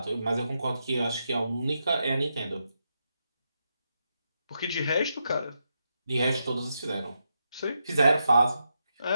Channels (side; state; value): both; inverted; correlation -0.84